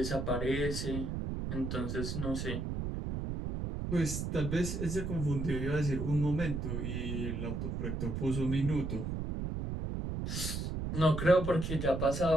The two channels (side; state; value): right; noise; rumble, 3 dB below the sound